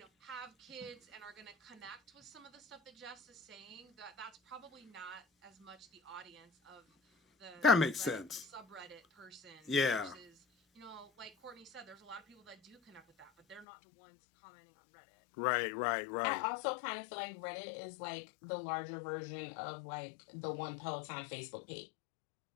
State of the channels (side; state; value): right; drops out; at 13.7 s